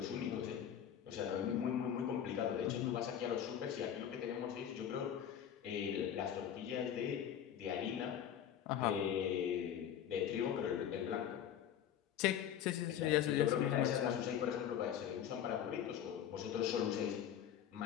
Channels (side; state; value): right; quieter; 9.6 dB